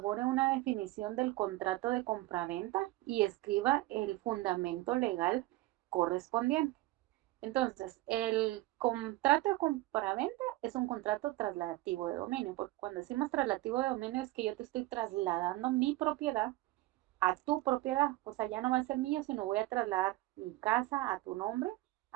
una definición del contrato de compraventa y escriba el fundamento legal correspondiente. Entonces, el contrato de compraventa es un contrato trasladativo de dominio, porque cuando decimos trasladativo de dominio es que yo te estoy trasladando mi propiedad a tu propiedad. O sea, ya no va a ser mío, sino voy a trasladar mi casa a tu nombre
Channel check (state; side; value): quieter; left; 18.5 dB